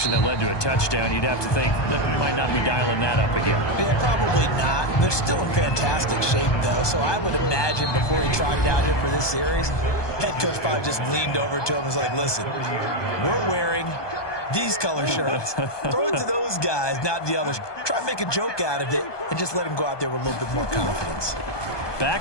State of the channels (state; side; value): late; right; 1.2 ms